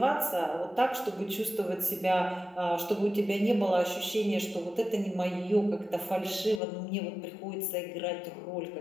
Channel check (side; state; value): right; drops out; at 6.6 s